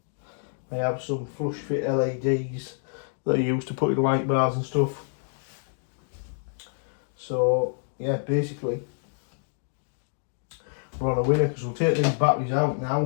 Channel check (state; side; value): silent; right; digital silence